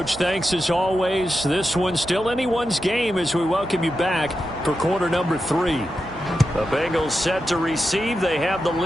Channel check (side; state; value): right; noise; hum, 20 dB below the sound